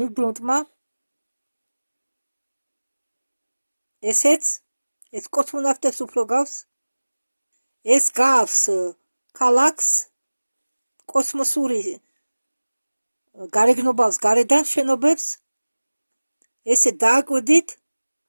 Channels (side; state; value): both; inverted; correlation -1.00